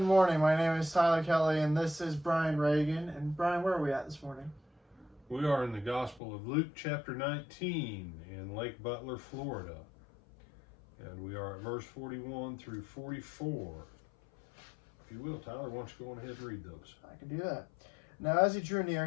morning. My name is Tyler Kelly, and this is Brian Reagan. And Brian, where are we at this morning? We are in the Gospel of Luke, chapter 19, in Lake Butler, Florida. And we are at verse 41 through 44. If you will, Tyler, why don't you go on ahead and read those? I can do that. Now, as he drew near,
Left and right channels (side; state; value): right; drops out; at 6.2 s